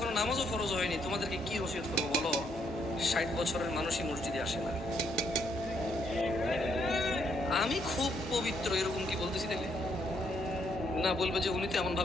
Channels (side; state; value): both; normal; correlation 0.73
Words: নামাজও ফরজ হয়নি। তোমাদেরকে কি ওসিয়ত করবো বলো? 60 বছরের মানুষই মসজিদে আসে না। আমি খুব পবিত্র এরকম কি বলতেছি দেখলে? না, বলবে যে উনি তো এমন